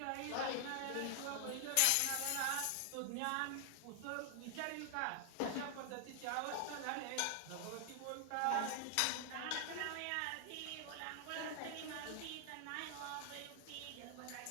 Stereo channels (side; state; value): both; different; correlation 0.00